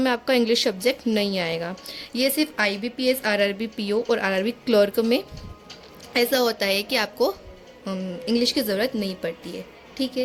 में आपका इंग्लिश सब्जेक्ट नहीं आएगा। ये सिर्फ IBPS RRB PO और RRB क्लर्क में ऐसा होता है कि आपको इंग्लिश की ज़रूरत नहीं पड़ती है। ठीक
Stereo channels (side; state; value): both; identical; correlation 1.00